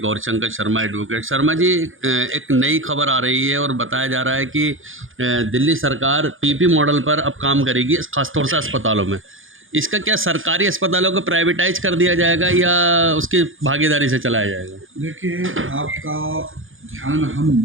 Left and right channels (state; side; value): late; left; 0.59 ms